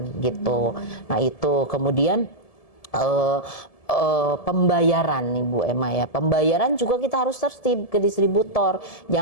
gitu. Nah itu kemudian pembayaran nih Bu Emma ya, pembayaran juga kita harus tertib ke distributor.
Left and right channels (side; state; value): right; late; 1.7 ms